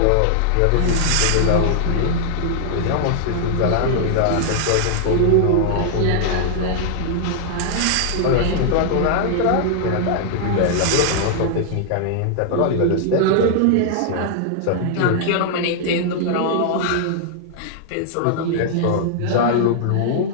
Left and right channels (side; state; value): both; different; correlation -0.01